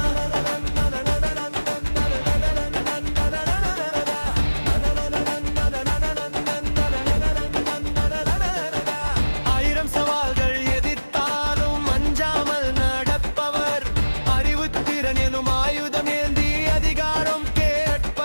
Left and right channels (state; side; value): inverted; both; correlation -1.00